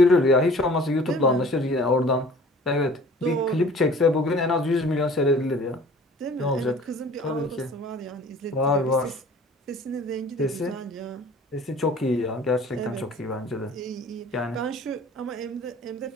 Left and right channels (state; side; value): normal; both; correlation 0.48